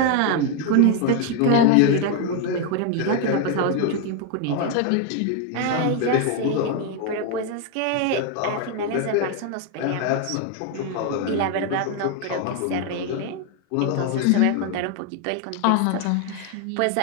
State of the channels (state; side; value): different; both; correlation 0.01